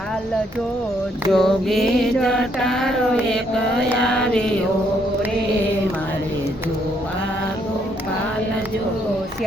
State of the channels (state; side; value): normal; both; correlation 0.71